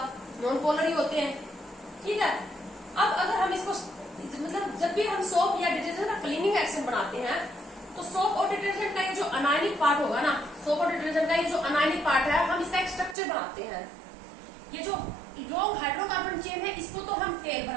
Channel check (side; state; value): left; drops out; at 13.2 s